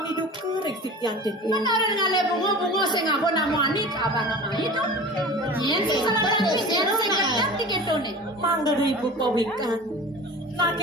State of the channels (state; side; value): normal; both; correlation 0.37